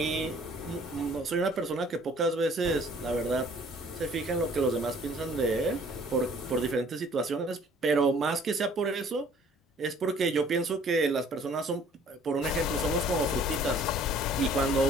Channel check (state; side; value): normal; both; correlation 0.55